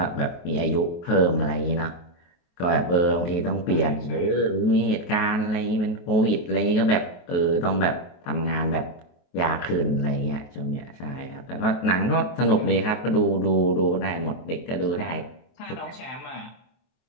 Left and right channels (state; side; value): late; right; 23 ms